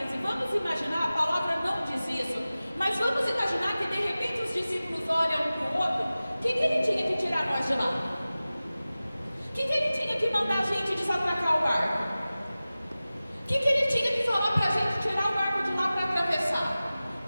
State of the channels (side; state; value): both; inverted; correlation -0.97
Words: vamos imaginar, a palavra não diz isso, mas vamos imaginar que de repente os discípulos olham um para o outro, o que ele tinha que tirar nós de lá? O que ele tinha que mandar a gente desatracar o barco? O que ele tinha que falar para a gente tirar o barco de lá para atravessar?